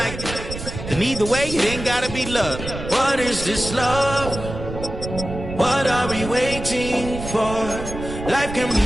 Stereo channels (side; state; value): right; noise; rumble, 9 dB below the sound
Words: And either way, it ain't gotta be love. What is this love? What are we waiting for? Life can be